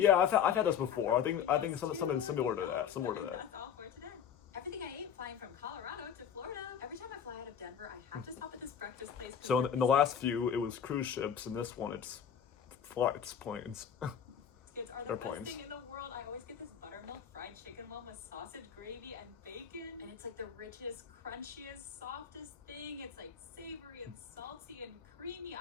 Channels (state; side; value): quieter; right; 8.1 dB